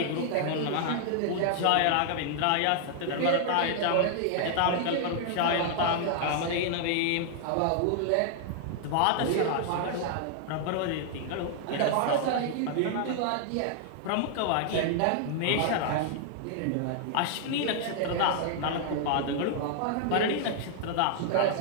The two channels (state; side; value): different; both; correlation 0.00